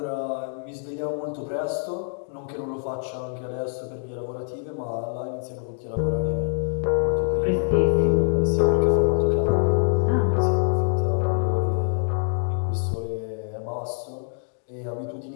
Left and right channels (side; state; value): right; silent; 62 dB below the other